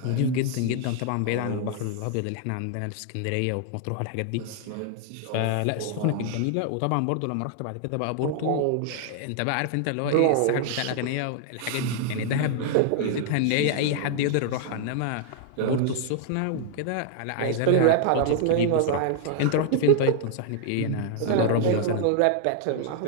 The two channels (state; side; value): different; both; correlation 0.00